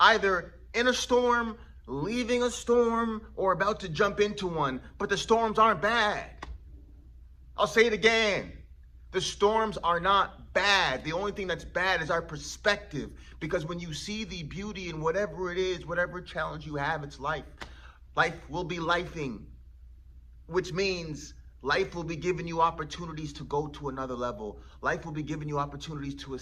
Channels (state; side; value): identical; both; correlation 1.00